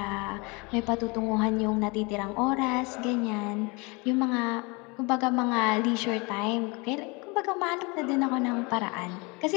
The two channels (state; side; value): quieter; right; 28.3 dB